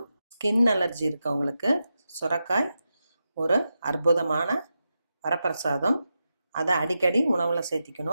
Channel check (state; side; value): inverted; both; correlation -0.89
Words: ஸ்கின் அலர்ஜி இருக்கவங்களுக்கு சுரக்காய் ஒரு அற்புதமான வரப்பிரசாதம். அதை அடிக்கடி உணவில்